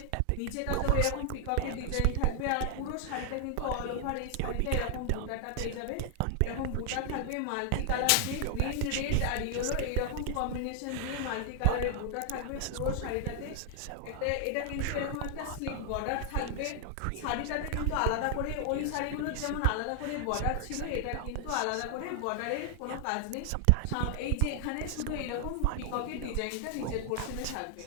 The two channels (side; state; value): both; different; correlation 0.00